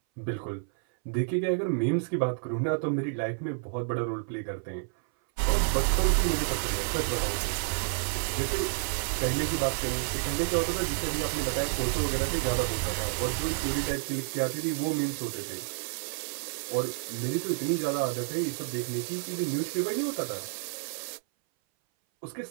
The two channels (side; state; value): left; silent; 58 dB below the other